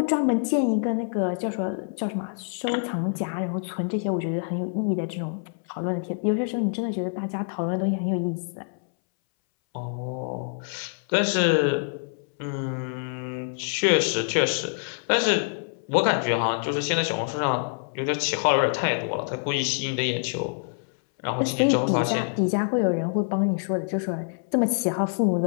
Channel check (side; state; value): right; silent; 61 dB below the other